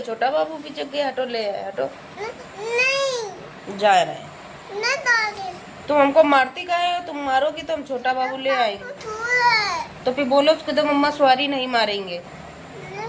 छोटा बाबू भी जग गया। हटो, ले आए, हटो। नहीं, जा रहे हैं। नहीं दादी। तुम हमको मारती काहे हो? तुम मारोगी तो हम छोटा बाबू ले आएंगे। सो रहा है। तो फिर बोलो उसको तो मम्मा सॉरी नहीं मारेंगे।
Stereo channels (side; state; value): both; identical; correlation 1.00